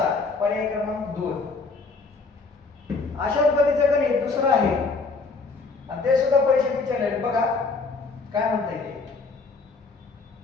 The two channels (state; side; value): quieter; right; 4.1 dB